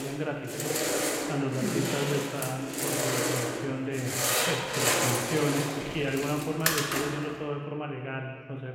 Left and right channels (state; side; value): identical; both; correlation 1.00